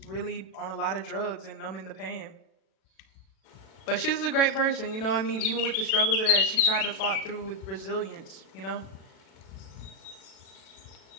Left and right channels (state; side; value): late; right; 36 ms